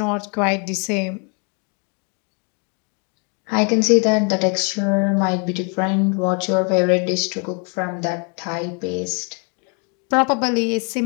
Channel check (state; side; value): quieter; right; 36.5 dB